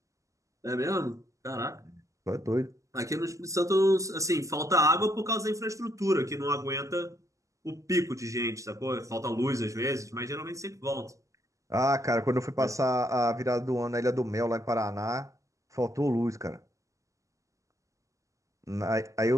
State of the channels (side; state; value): left; late; 0.16 ms